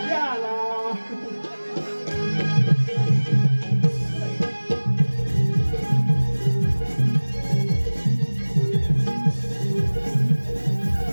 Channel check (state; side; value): inverted; both; correlation -1.00